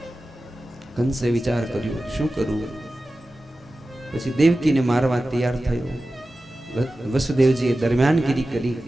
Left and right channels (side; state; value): both; normal; correlation 0.95